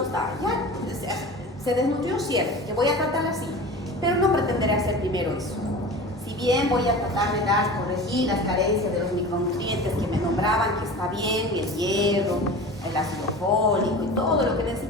ya se desnutrió, cierto, que voy a tratarla así, pero no pretenderé hacer primero eso. Si bien voy a tratar de corregir las carencias de los micronutrientes que me nombraban, que está bien, el hierro, el ácido fólico y todo lo que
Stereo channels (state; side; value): normal; both; correlation 0.35